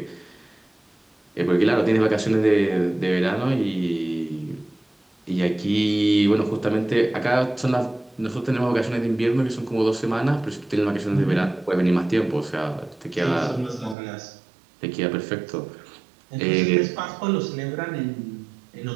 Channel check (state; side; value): drops out; left; at 14.0 s